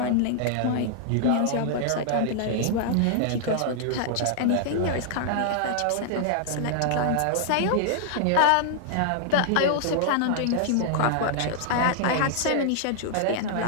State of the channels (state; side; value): different; both; correlation -0.01